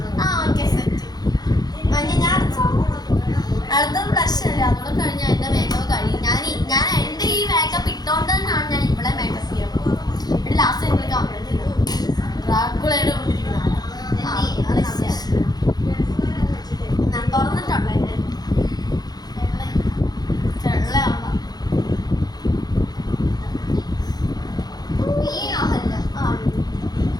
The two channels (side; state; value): right; late; 0.19 ms